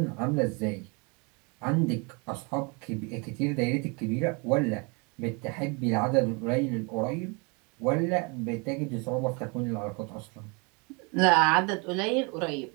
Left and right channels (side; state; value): left; quieter; 31.5 dB